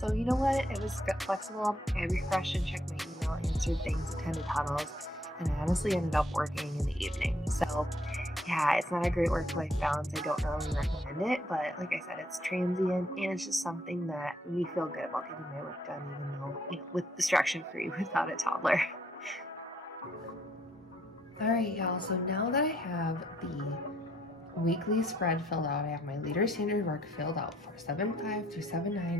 you know what? It was flexible. I refreshed and checked my email, answered things, attended huddles, and I honestly ended up working in the evening. So yeah, it's not a great work-life balance. I don't really recommend it, but like I said, it's transient, and it's just something that we feel good about getting my work done, even though, with distraction-free without a toddler. All right, y'all, so now that I have the weekly spread filled out, I have my Leader Standard Work filled out for 7/5 through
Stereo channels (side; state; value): both; normal; correlation 0.69